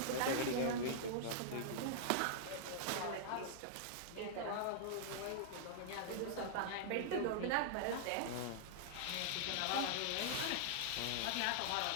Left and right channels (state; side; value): different; both; correlation -0.01